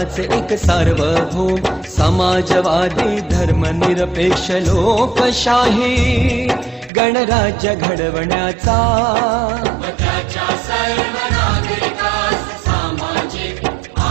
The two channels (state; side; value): drops out; left; at 6.9 s